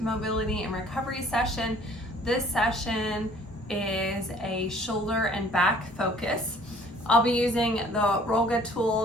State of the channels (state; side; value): normal; both; correlation 0.55